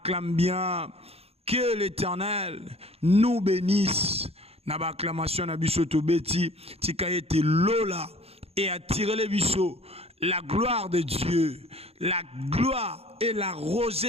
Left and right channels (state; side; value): late; left; 0.29 ms